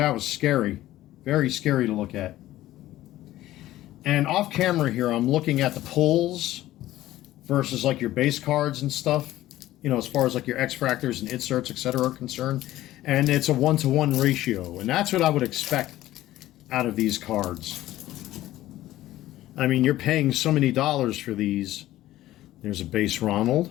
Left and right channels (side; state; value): right; quieter; 15.1 dB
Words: was scary. Very scary to look at. And off camera here, I'm looking at the pulls versus like your base cards and stuff, you know, as far as like your X-fractors and inserts, etc. are concerned. And it's a 1-to-1 ratio. And that's what I would expect out of these cards. I mean, you're paying so many dollars for these. There's a base